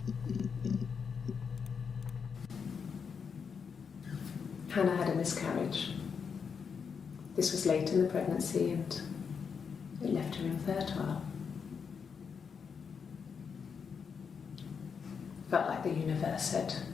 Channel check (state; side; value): quieter; right; 6.2 dB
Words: Hannah had a miscarriage. This was late in the pregnancy and it left her infertile. Felt like the universe had